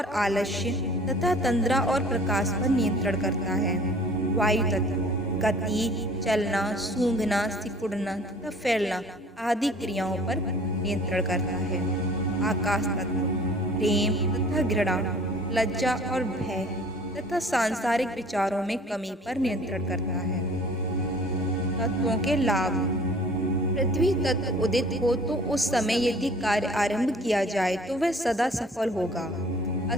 आलस्य तथा तंद्रा और प्रकाश पर नियंत्रण करता है। वायु तत्व गति, चलना, सूंघना, सिकुड़ना तथा फैलना आदि क्रियाओं पर नियंत्रण करता है। आकाश तत्व प्रेम तथा घृणा, लज्जा और भय तथा सांसारिक विचारों में कमी पर नियंत्रण करता है। तत्वों के लाभ। पृथ्वी तत्व उदित हो तो उस समय यदि कार्य आरंभ किया जाए तो वह सदा सफल होगा।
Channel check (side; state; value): both; normal; correlation 0.50